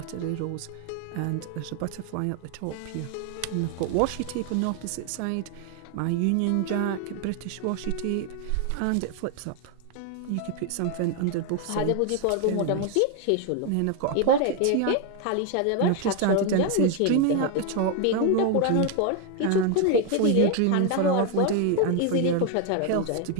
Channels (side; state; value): both; different; correlation 0.01